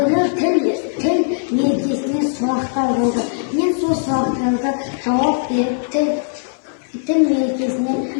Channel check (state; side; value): silent; right; digital silence